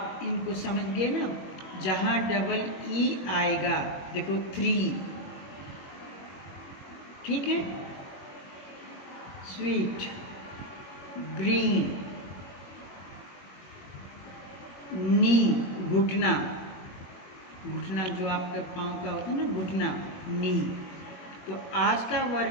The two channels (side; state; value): right; late; 21 ms